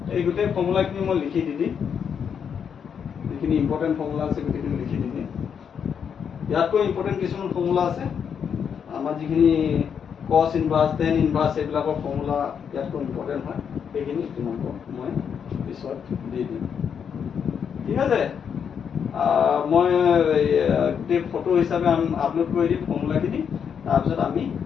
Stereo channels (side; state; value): right; quieter; 7.4 dB